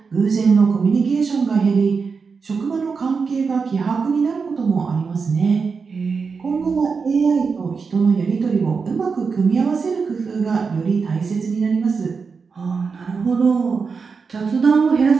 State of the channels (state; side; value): quieter; left; 5.2 dB